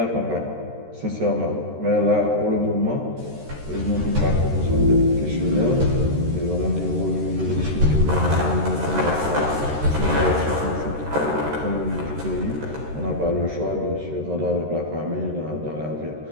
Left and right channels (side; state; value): left; late; 13 ms